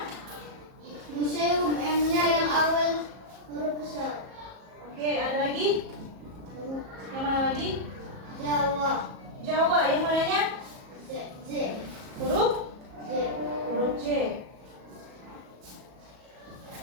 Museum M-nya yang awal huruf besar. Oke, ada lagi? Yang mana lagi? Jawa. Jawa. Yang mananya? J. Huruf? J. Huruf J.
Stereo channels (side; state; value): left; late; 37 ms